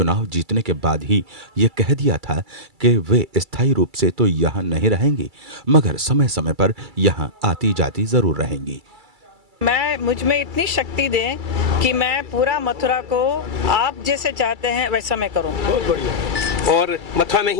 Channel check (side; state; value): left; late; 2.3 ms